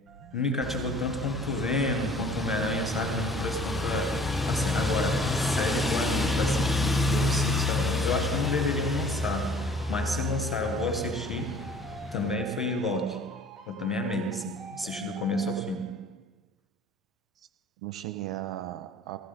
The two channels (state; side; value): normal; both; correlation 0.51